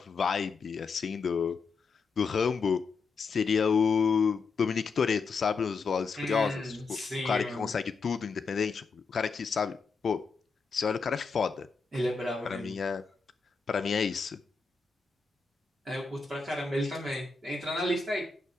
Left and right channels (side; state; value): right; quieter; 4.8 dB